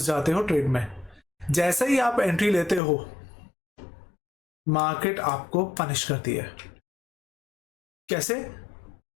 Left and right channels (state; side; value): drops out; right; at 2.8 s